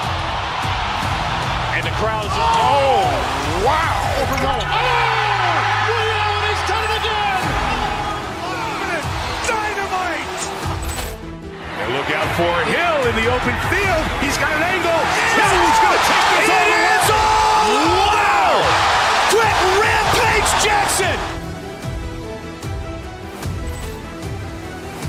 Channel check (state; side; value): identical; both; correlation 1.00